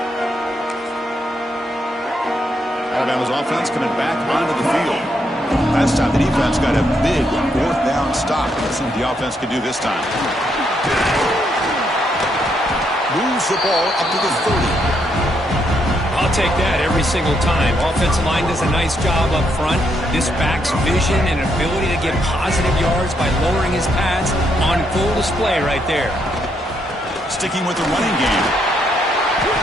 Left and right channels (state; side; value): normal; both; correlation 0.76